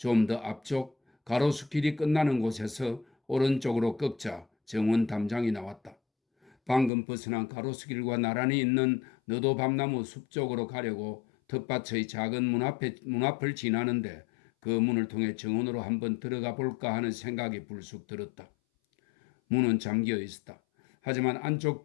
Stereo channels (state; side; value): drops out; right; at 6.9 s